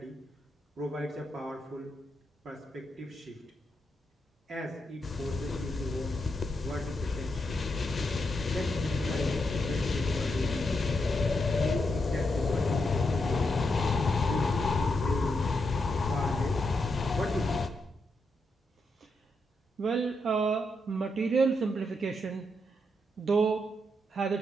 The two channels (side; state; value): both; normal; correlation 0.82